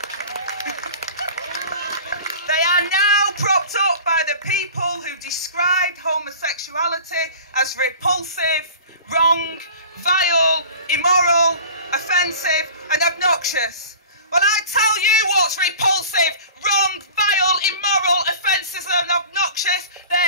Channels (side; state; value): both; inverted; correlation -0.41